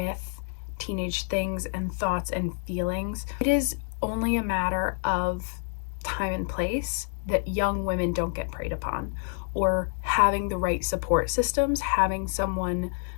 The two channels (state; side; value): silent; right; 57 dB below the other